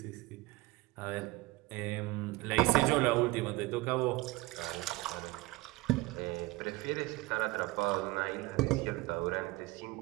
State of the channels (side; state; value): left; quieter; 20.2 dB